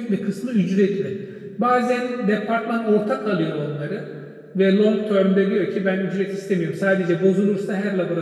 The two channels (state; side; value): identical; both; correlation 1.00